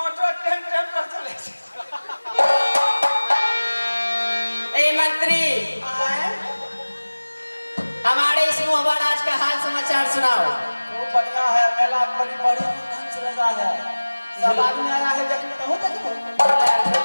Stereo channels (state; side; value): inverted; both; correlation -1.00